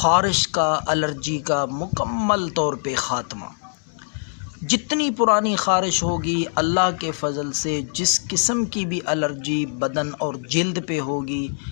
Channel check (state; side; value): silent; right; digital silence